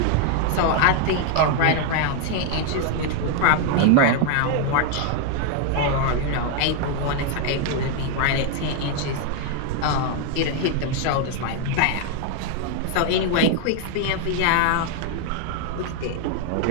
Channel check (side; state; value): both; different; correlation 0.00